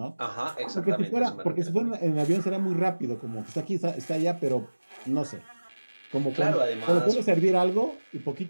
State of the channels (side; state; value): both; inverted; correlation -1.00